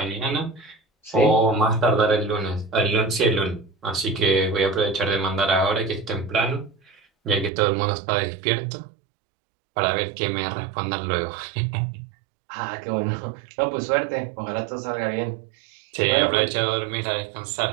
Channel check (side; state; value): left; drops out; at 7.5 s